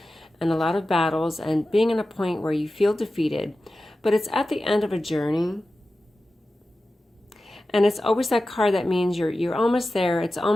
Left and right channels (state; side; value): normal; both; correlation 0.94